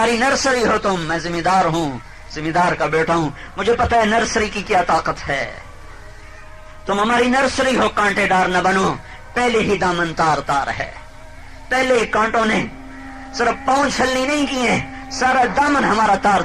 نرسری ہو تم، میں ذمہ دار ہوں، ذمہ دار کا بیٹا ہوں، مجھے پتہ ہے نرسری کی کیا طاقت ہے۔ تم ہماری نرسری ہو، کانٹے دار نہ بنو، پہلے ہی دامن تار تار ہے، پہلے کانٹوں نے صرف پاؤں چھلنی نہیں کیے، سارا دامن ہمارا تار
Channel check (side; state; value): both; identical; correlation 1.00